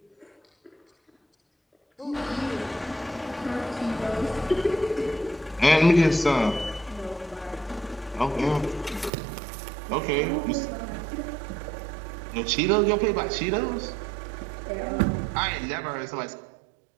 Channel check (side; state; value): left; drops out; at 9.1 s